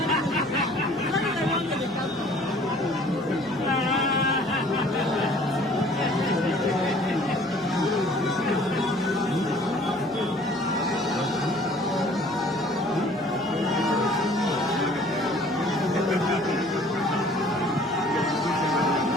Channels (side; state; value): right; noise; hum, 20 dB below the sound